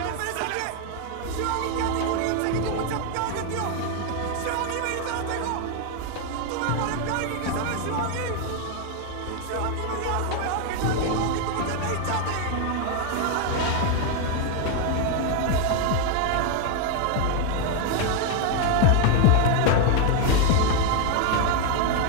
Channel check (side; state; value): both; different; correlation 0.01